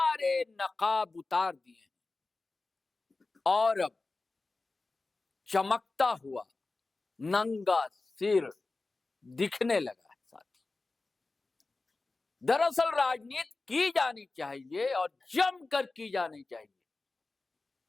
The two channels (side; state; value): right; quieter; 3.5 dB